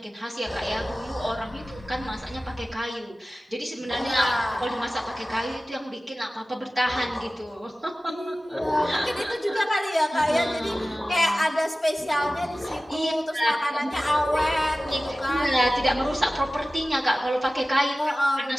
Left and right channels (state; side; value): normal; both; correlation 0.96